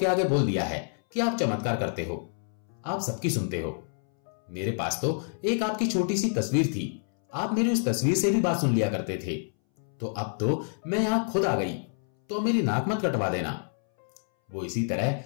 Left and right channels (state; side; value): silent; right; 59 dB below the other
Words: आगे बोल दिया है कि आप चमत्कार करते हो, आप सबकी सुनते हो। मेरे पास तो एक आपकी छोटी सी तस्वीर थी, आप मेरी उस तस्वीर से भी बात सुन लिया करते थे, तो अब तो मैं यहां खुद आ गई, तो मेरी नाक मत कटवा देना। वो इसी तरह